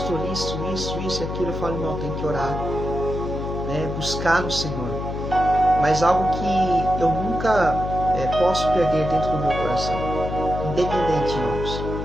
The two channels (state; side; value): noise; left; hum, 5 dB below the sound